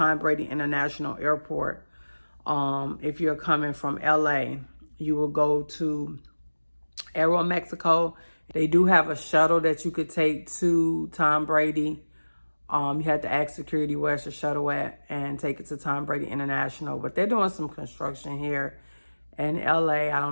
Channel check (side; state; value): both; inverted; correlation -1.00